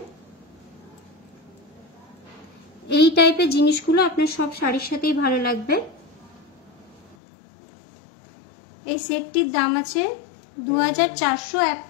এই টাইপের জিনিসগুলো আপনার সব শাড়ির সাথেই ভালো লাগবে। এই সেটটির দাম আছে 2400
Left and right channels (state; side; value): drops out; right; at 7.2 s